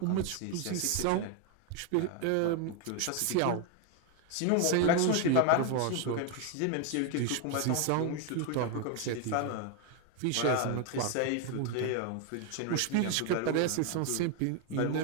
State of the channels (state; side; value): different; both; correlation 0.01